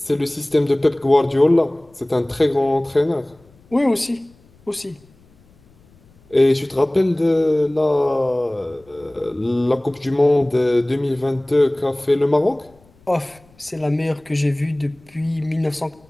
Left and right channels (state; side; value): noise; left; rumble, 30 dB below the sound